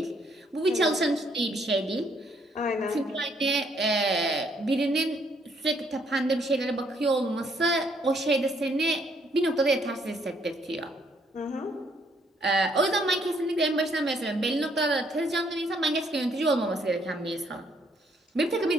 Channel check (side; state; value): both; normal; correlation 0.69